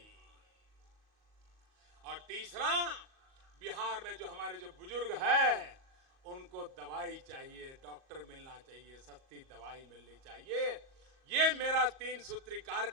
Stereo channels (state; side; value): late; left; 38 ms